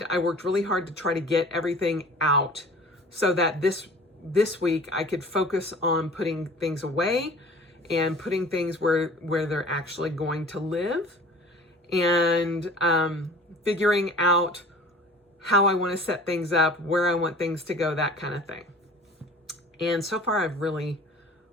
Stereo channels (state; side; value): normal; both; correlation 0.45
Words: I worked really hard to try to get everything out so that this week I could focus on putting things away and putting things where they're actually going to live, and figuring out how I want to set things up, where I want things to go, that kind of thing. And so far, I've really